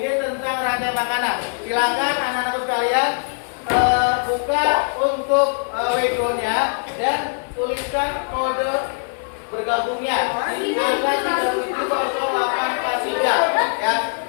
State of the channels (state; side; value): silent; right; 65 dB below the other